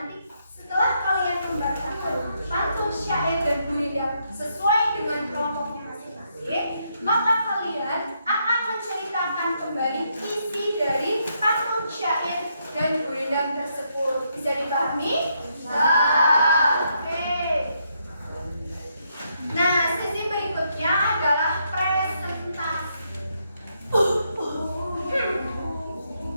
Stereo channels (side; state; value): both; inverted; correlation -0.77